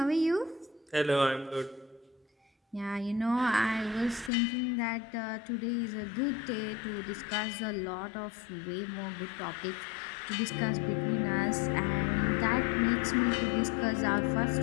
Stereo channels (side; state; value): right; drops out; at 4.3 s